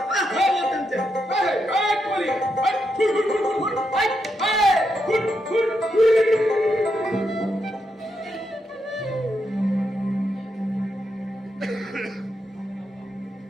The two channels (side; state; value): both; normal; correlation 0.82